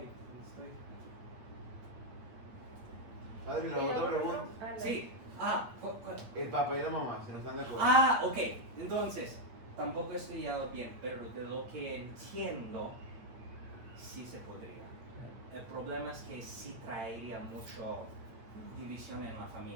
estoy... Padre, la otra pregunta. Sí, El papá y la mamá, si no están de acuerdo. ok. Entonces, tampoco he estudiado bien, pero de lo que entiendo, sí se podría. El problema es que sí traería mucho división en la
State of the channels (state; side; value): late; left; 8.6 ms